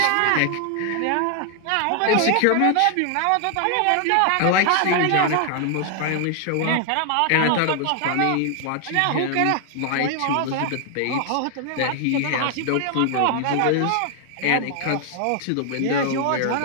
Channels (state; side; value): different; both; correlation 0.00